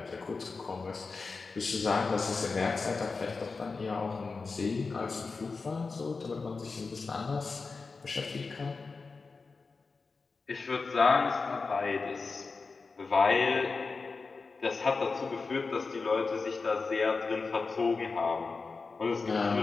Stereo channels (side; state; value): right; quieter; 4.3 dB